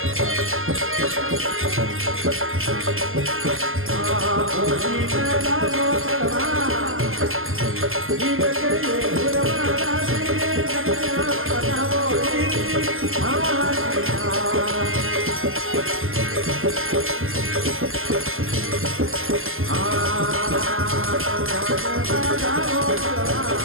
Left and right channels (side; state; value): left; late; 0.60 ms